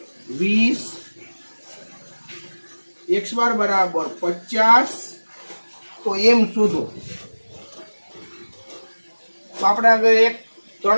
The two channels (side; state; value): both; inverted; correlation -1.00